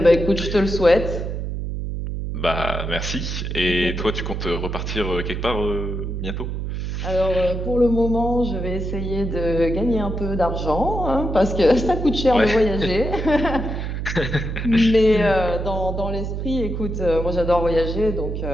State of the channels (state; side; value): noise; right; hum, 4 dB below the sound